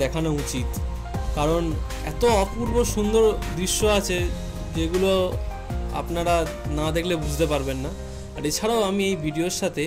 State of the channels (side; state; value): both; identical; correlation 1.00